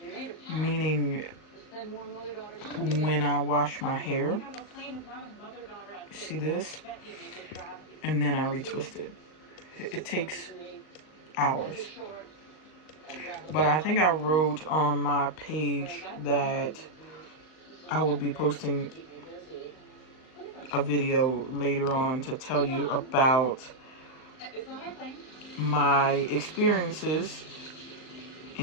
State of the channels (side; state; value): right; late; 39 ms